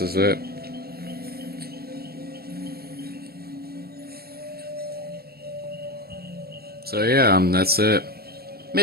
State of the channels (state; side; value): late; left; 0.45 ms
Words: is it. So yeah, that's it.